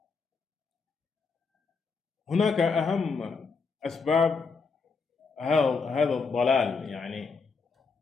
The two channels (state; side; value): quieter; right; 4.8 dB